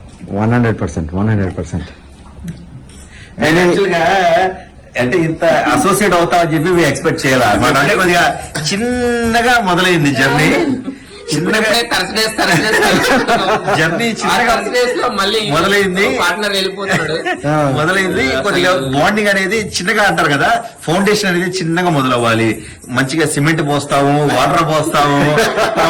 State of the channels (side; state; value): both; identical; correlation 1.00